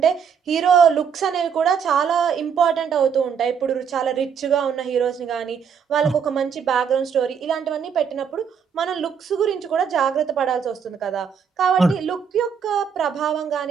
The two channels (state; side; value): quieter; left; 7.1 dB